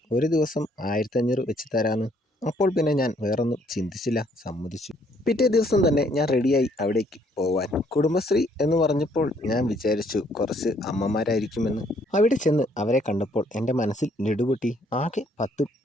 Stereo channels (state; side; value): normal; both; correlation 0.66